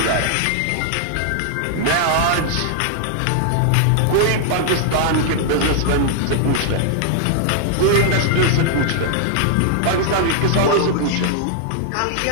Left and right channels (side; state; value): both; different; correlation -0.01